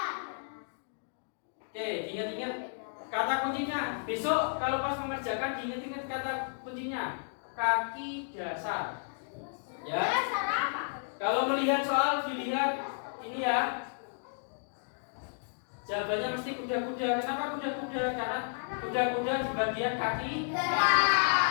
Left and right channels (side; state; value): right; silent; digital silence